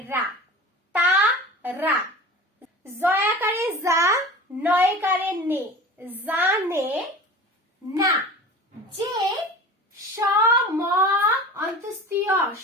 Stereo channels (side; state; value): both; normal; correlation 0.37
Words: রা তা রা। জয়াকারে যা নয়কারে নে জানে না। যে সম অন্তস্তীয়